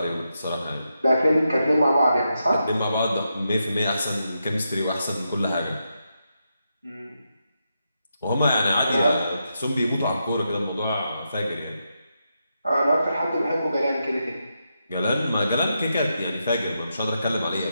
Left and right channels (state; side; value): inverted; both; correlation -0.85